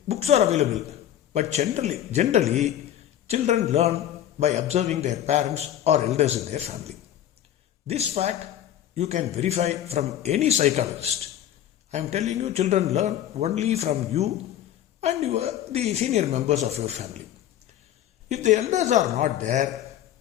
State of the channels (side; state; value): right; quieter; 11.3 dB